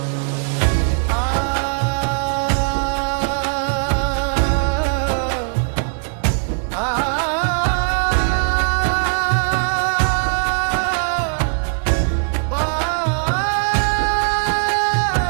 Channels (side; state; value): left; silent; digital silence